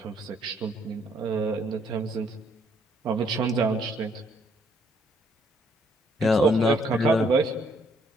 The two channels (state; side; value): normal; both; correlation 0.68